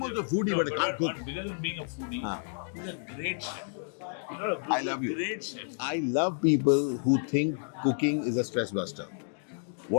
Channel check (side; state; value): right; silent; digital silence